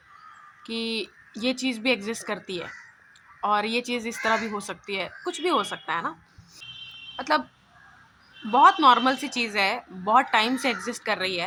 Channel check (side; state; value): both; identical; correlation 1.00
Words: कि ये चीज़ भी एग्जिस्ट करती है और ये चीज़ इस तरह भी हो सकती है, कुछ भी हो सकता है ना। मतलब बहुत नॉर्मल सी चीज़ है, बहुत टाइम से एग्जिस्ट कर रही